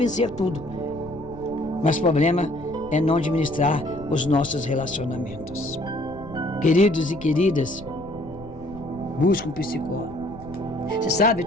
tudo. Mas o problema é não administrar os nossos relacionamentos. Queridos e queridas, busque um psicólogo. Você sabe, eu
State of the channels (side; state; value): left; noise; rumble, 18 dB below the sound